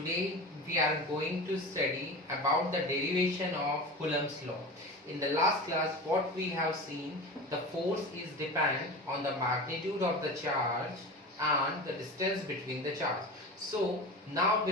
we are going to study about the derivation of Coulomb's law. In the last class what we have seen, the force is dependent on the magnitude of the charge and the distance between the charge. So now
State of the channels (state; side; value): normal; both; correlation 0.30